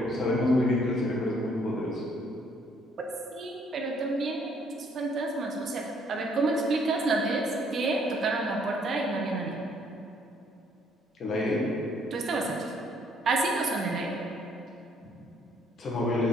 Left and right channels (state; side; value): normal; both; correlation 0.65